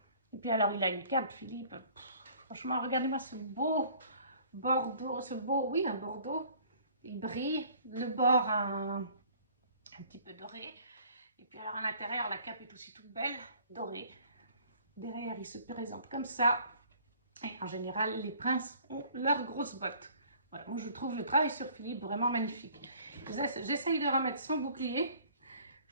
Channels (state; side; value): inverted; both; correlation -0.54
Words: Et puis alors, il a une cape, Philippe. Franchement, regardez-moi ce beau bordeaux, oui, un bordeaux. Il brille, le bord un petit peu doré. Et puis alors à l'intérieur, la cape est aussi toute belle, dorée. Derrière, il se présente comme ça. Et en général, les princes ont leurs grosses bottes. Voilà, moi je trouve le travail sur Philippe vraiment magnifique. J'essaye de remettre son bouclier.